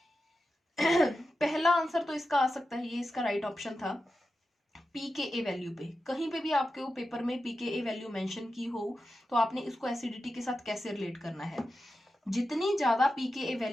पहला आंसर तो इसका आ सकता है, ये इसका राइट ऑप्शन था, pKa वैल्यू पे, कहीं पे भी आपके वो पेपर में pKa वैल्यू मेंशन की हो तो आपने इसको एसिडिटी के साथ कैसे रिलेट करना है, जितनी ज्यादा pKa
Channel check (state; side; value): normal; both; correlation 0.91